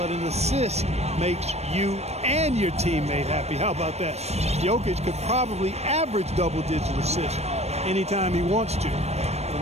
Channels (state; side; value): late; left; 0.31 ms